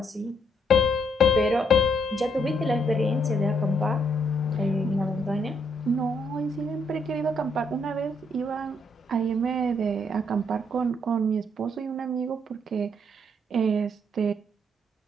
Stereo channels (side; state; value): both; normal; correlation 0.72